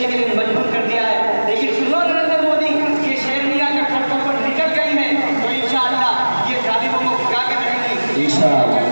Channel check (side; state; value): both; inverted; correlation -1.00